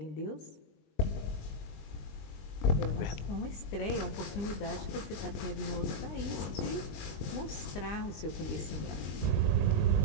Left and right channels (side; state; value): right; late; 20 ms